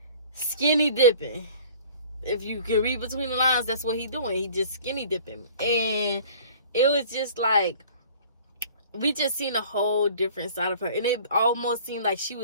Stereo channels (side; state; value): both; inverted; correlation -0.48